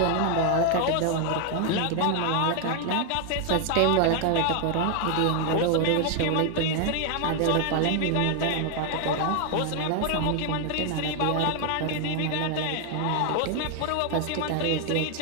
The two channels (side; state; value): both; different; correlation 0.01